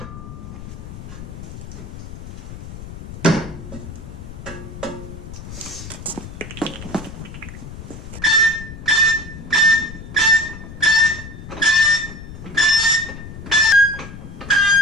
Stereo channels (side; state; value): left; noise; rumble, 12 dB below the sound